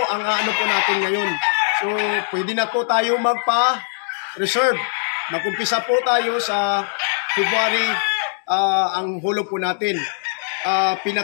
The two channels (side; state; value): right; silent; digital silence